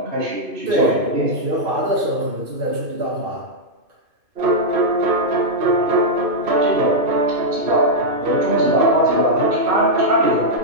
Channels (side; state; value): left; late; 2.5 ms